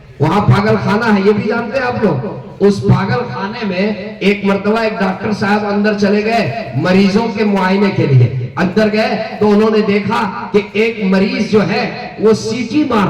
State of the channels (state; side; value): identical; both; correlation 1.00